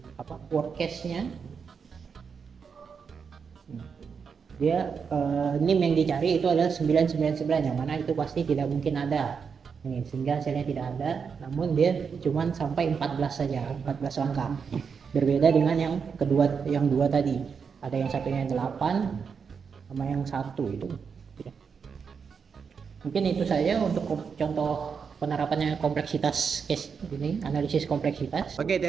worst case-nya dia NIM yang dicari itu adalah 999, yang mana itu pasti tidak mungkin ada. Sehingga hasilnya tidak ada, namun dia cuma sampai 14 saja, 14 langkah. Berbeda dengan yang kedua, yang 2 tadi. Ada yang satunya 8 sama yang 1 itu. Mungkin itu saja untuk contoh penerapannya kompleksitas case ini, analisis kompleksitas. Oke,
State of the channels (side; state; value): left; quieter; 6.1 dB